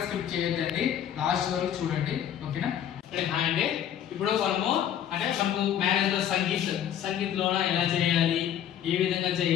స్కిప్ చేయొద్దండి, లాస్ట్ వరకు చూడండి, ఓకేనా? హాయ్ అండి, ఇప్పుడు మనకు మ్యారేజ్ లో సంగీత్లోన ఎలా చేయాలి, ఏ విధంగా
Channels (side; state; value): right; quieter; 10.1 dB